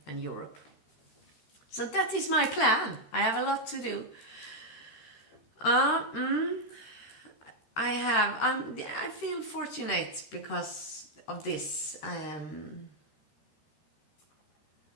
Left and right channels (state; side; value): late; right; 14 ms